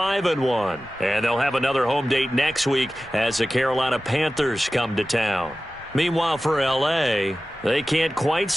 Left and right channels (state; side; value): normal; both; correlation 0.95